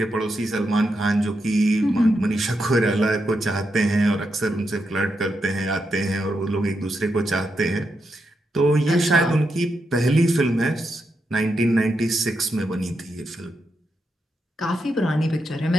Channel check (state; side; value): normal; both; correlation 0.84